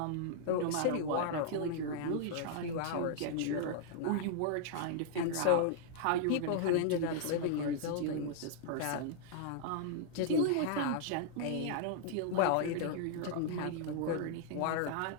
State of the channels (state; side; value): different; both; correlation -0.01